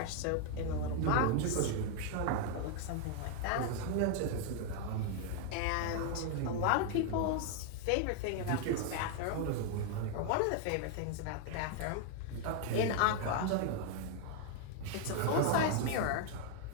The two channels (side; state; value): both; different; correlation 0.00